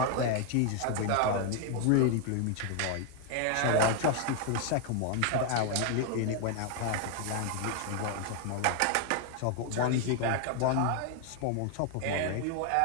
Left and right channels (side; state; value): both; different; correlation 0.00